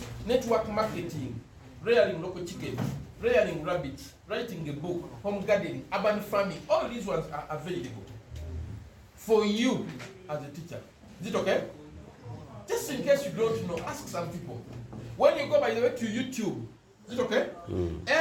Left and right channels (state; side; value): identical; both; correlation 1.00